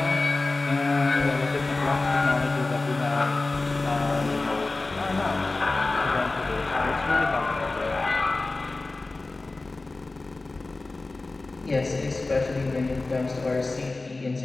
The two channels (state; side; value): quieter; right; 3.3 dB